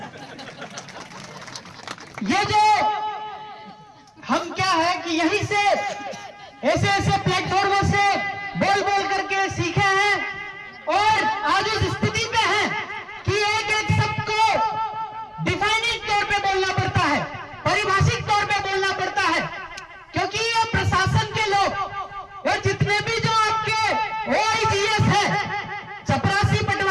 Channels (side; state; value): both; identical; correlation 1.00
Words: ये जो हम क्या है कि यहीं से ऐसे ऐसे प्लेटफॉर्मों से बोल बोल करके सीखे हैं और आज उस स्थिति पे हैं कि एक एक शब्द को डिफाइनिंग तौर पे बोलना पड़ता है, परिभाषिक तौर पे बोलना पड़ता है, क्योंकि ये प्रशासन के लोग और जितने भी जो आपके OIGS है, चपरासी